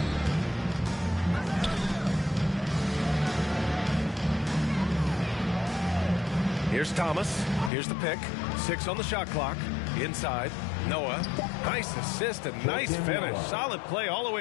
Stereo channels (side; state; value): right; drops out; at 7.7 s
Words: Here's Thomas. Here's the pick. 6 on the shot clock. Inside. Noah. Nice assist and nice finish. Solid play all the